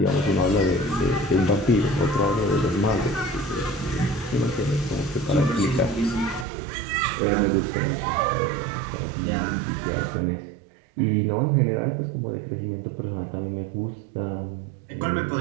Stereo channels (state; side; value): drops out; left; at 6.5 s